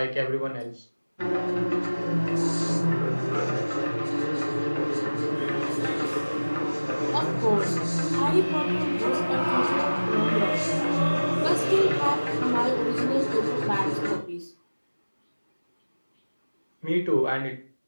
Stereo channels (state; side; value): inverted; both; correlation -1.00